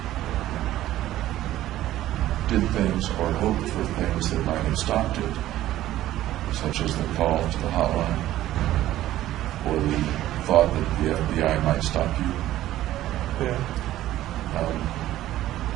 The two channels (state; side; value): quieter; left; 14.1 dB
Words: did things or hoped for things that might have stopped it, such as the call to the hotline or the thought that the FBI might stop you. Yeah.